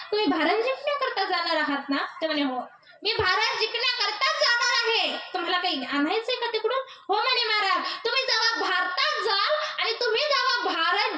तुम्ही भारत जिंकण्याकरता जाणार आहात ना? ते म्हणे, हो मी भारत जिंकण्याकरताच जाणार आहे, तुम्हाला काही आणायचंय का तिकडून? हो म्हणे महाराज, तुम्ही जेव्हा भारतात जाल आणि तुम्ही जेव्हा भारत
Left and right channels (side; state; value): both; identical; correlation 1.00